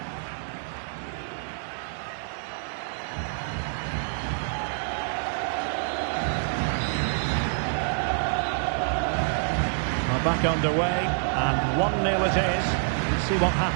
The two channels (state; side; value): silent; left; 60 dB below the other